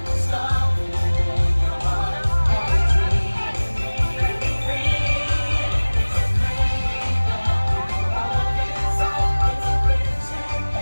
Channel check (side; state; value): both; inverted; correlation -1.00